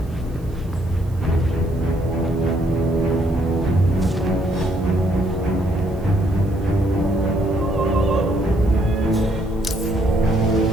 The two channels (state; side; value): noise; right; hiss, 30 dB below the sound